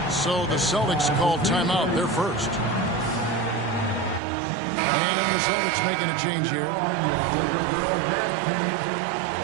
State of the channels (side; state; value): left; drops out; at 4.2 s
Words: So the Celtics call timeout. They're first. And the Celtics making a change here.